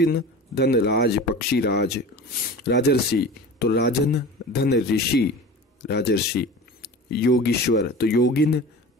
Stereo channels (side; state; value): both; normal; correlation 0.35